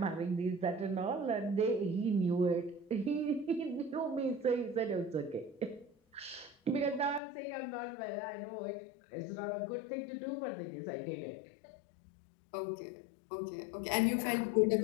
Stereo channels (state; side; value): drops out; right; at 7.2 s